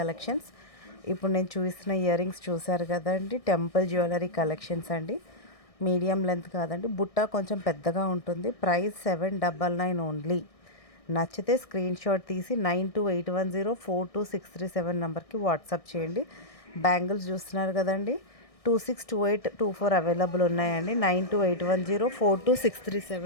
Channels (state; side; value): late; right; 1.6 ms